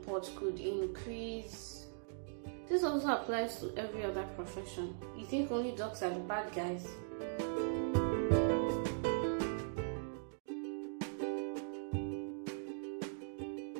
could increase. This also applies to every other profession. You think only docs are the bad guys?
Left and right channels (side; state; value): left; silent; digital silence